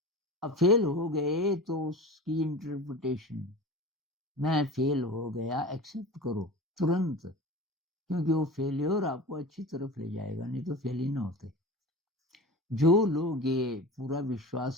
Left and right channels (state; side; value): normal; both; correlation 0.33